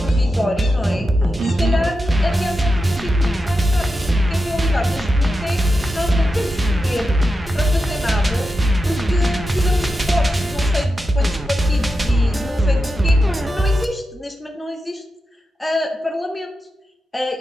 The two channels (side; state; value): both; normal; correlation 0.89